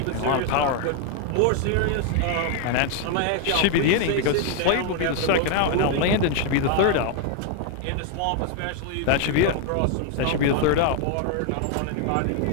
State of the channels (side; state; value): both; different; correlation 0.00